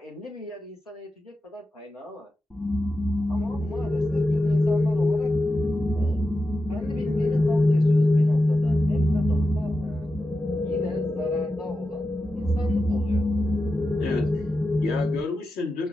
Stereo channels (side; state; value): both; normal; correlation 0.91